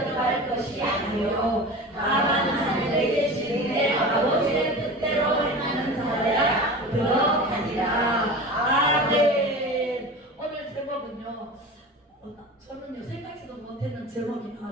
것이 아니요 다만 하늘에 계신 내 아버지의 뜻대로 행하는 자야 들어가리라. 아멘. 오늘 제목은요, 저는요 생각지도 못했는 제목이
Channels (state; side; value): normal; both; correlation 0.33